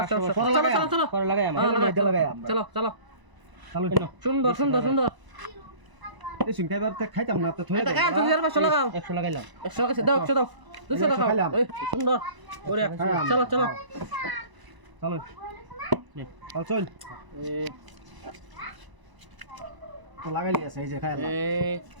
চলো চলো চলো পরে লাগাই আমরা চলো চলো চালু সুন্দর সুন্দর সুন্দর এই সিং খাইবার তে খাইতাম না তো থই এটা কাজ তুমি আর 500 লাগাও 100 লাগাইলাম 100 লাগাইছে দাও 100 দাও 200 লাগাও এই সুন্দর ওরে চলো চলো চালু চল চল তো লাগাইলি আছে এই যে খাইলাম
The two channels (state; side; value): late; left; 1.0 ms